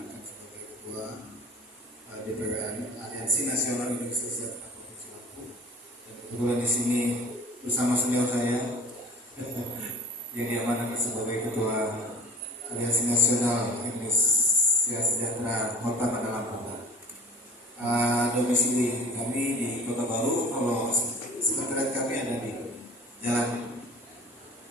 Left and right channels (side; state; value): both; normal; correlation 0.41